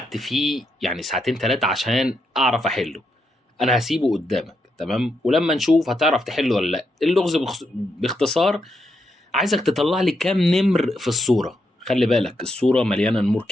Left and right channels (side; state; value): both; normal; correlation 0.81